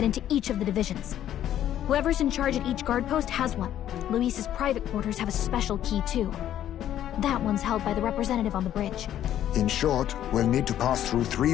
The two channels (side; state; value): right; quieter; 11.4 dB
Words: into each of the divisions. Whoever's in charge at each guard post has one. Luis's private quarters have a special key too. That one's held by the representative on the bridge. In short, we'll need to pass through 3